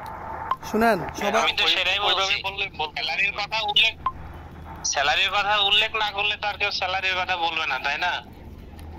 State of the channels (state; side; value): identical; both; correlation 1.00